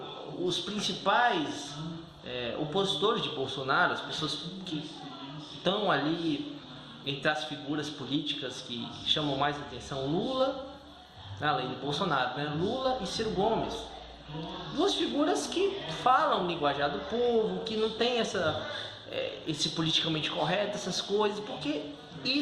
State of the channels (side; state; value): both; identical; correlation 1.00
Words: os principais opositores de Bolsonaro, as pessoas que estão ali entre as figuras políticas que chamam mais atenção, Lula, além de Bolsonaro, né? Lula e Ciro Gomes. Duas figuras que falam linguajar do povo, que não tem esse politicamente correto, essas coisas, porque